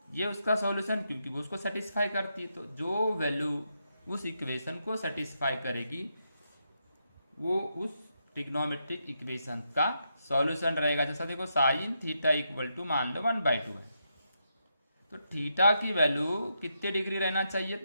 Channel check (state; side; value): inverted; both; correlation -0.82